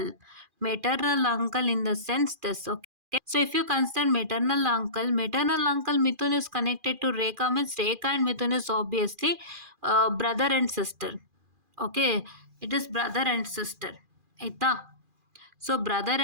Maternal uncle in the sense this. Okay. So if you consider maternal uncle Mithun is connected to Rekha, means Rekha and Mithun is obviously brother and sister. Okay. It is brother and sister. Aita. So brother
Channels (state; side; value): late; left; 2.4 ms